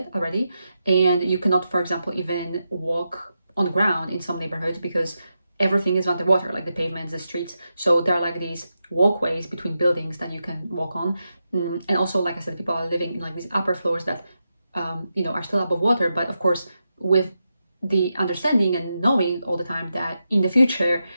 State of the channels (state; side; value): inverted; both; correlation -0.87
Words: already, and you cannot, for example, even walk on the ground in some neighborhoods because everything is underwater, like the pavements, the streets. So there are like these walkways between buildings that you can walk on. And also, like I said, people are living in like these upper floors that, are still above water. But of course, with the understanding and knowing all the time that in the future,